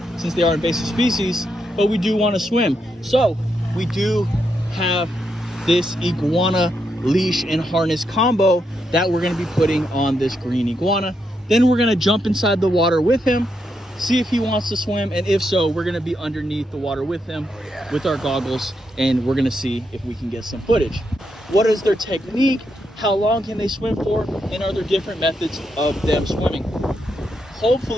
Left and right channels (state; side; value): normal; both; correlation 0.81